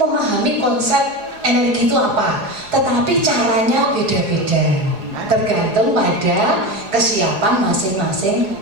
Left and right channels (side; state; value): left; late; 4.8 ms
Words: konsep energi itu apa, tetapi caranya beda-beda, tergantung pada kesiapan masing-masing